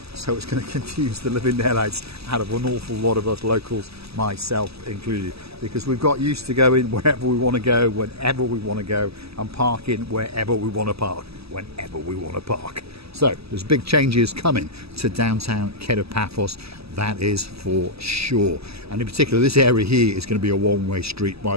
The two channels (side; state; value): left; late; 0.78 ms